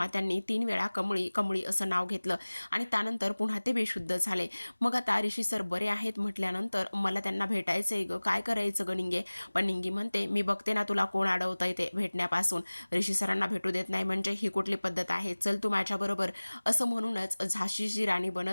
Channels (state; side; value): inverted; both; correlation -1.00